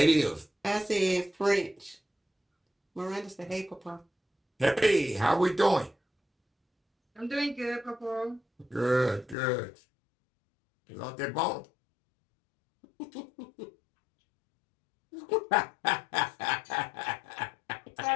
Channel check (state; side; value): drops out; right; at 9.3 s